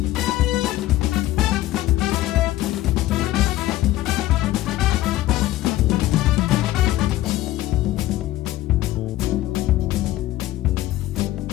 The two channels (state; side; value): quieter; right; 15.7 dB